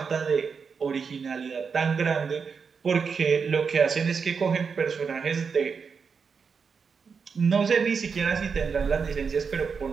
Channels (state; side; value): quieter; left; 5.7 dB